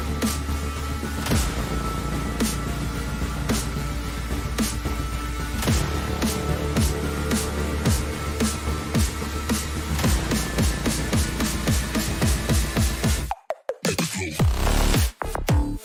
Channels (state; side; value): identical; both; correlation 1.00